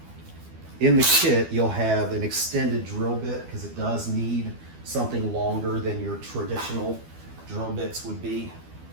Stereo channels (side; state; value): left; late; 12 ms